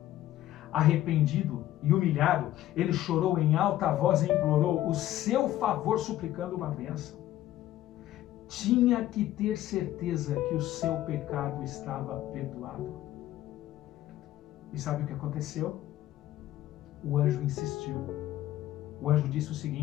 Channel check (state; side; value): quieter; right; 13.9 dB